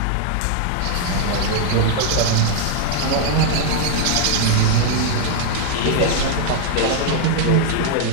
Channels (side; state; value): both; different; correlation 0.00